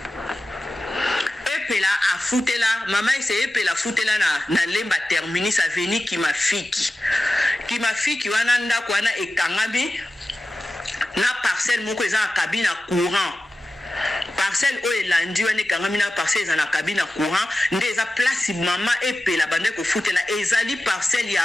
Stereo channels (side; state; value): both; normal; correlation 0.94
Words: epela afutela mama ese epela futela na lemba terminus avenir kimafiki wana ndako wana ekangami na parcelle moko eza na cabine courant parcelle o elandi wana ekangami na parcelle eza na cabine courant nde eza place mama epela bande kofutela ezali parcelle